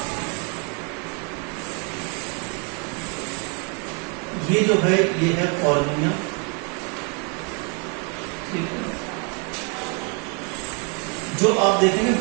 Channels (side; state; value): left; quieter; 35.8 dB